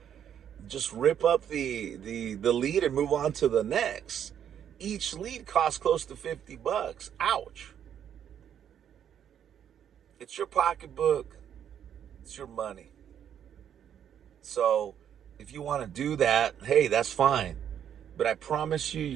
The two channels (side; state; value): left; quieter; 9.2 dB